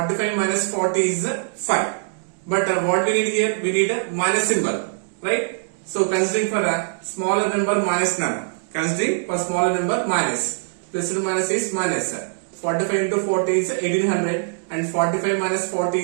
minus 40 is 5. But what we need here, we need a minus symbol, right? So considering for a smaller number minus none, considering for smaller number minus, plus to minus is minus. 45 into 40 is 1800 and 45 minus 40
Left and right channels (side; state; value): left; silent; digital silence